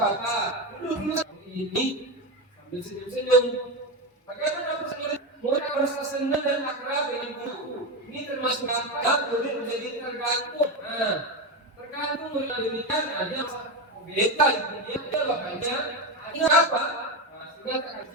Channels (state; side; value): normal; both; correlation 0.14